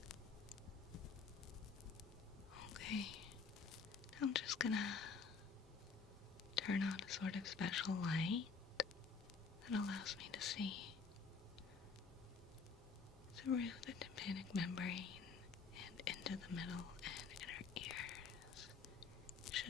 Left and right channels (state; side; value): quieter; right; 5.1 dB